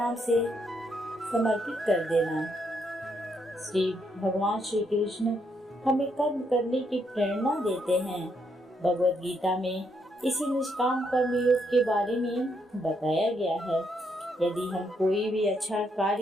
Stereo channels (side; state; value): both; normal; correlation 0.76